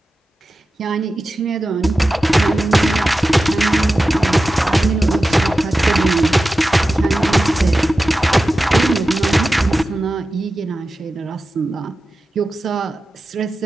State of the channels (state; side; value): normal; both; correlation 0.94